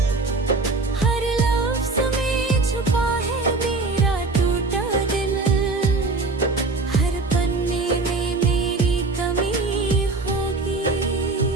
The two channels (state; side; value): quieter; left; 3.6 dB